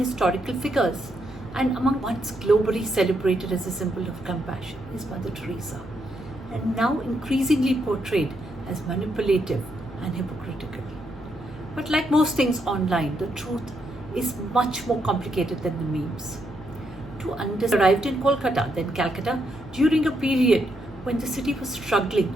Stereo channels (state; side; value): noise; left; hum, 18 dB below the sound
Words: figures, and among once globally celebrated as a symbol of compassion is Mother Teresa, and now increasingly portrayed as manipulative and hypocritical. But like most things online, the truth is much more complicated than the memes. To understand, arrived in Kolkata, then Calcutta, during a period when the city was struggling,